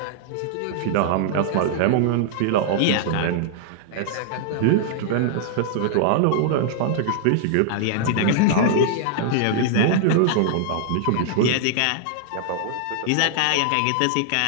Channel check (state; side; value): different; both; correlation -0.01